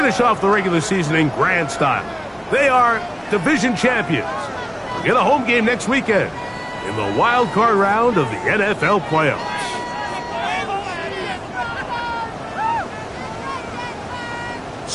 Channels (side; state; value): both; identical; correlation 1.00